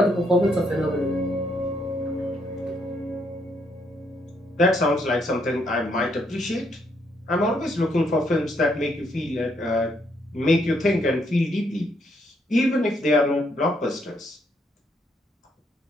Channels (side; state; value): both; normal; correlation 0.73